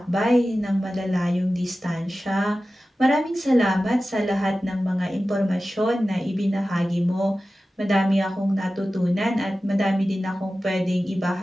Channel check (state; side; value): normal; both; correlation 0.95